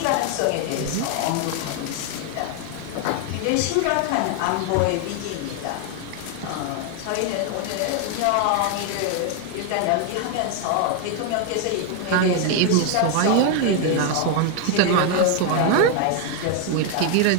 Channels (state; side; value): different; both; correlation 0.01